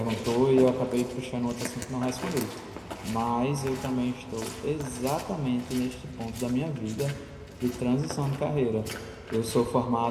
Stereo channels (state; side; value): identical; both; correlation 1.00